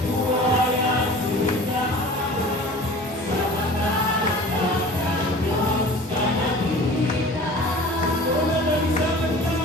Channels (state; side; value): normal; both; correlation 0.42